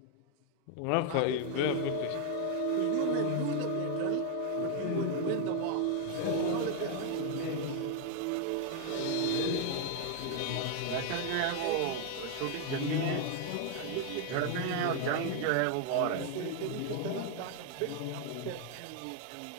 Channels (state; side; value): different; both; correlation 0.00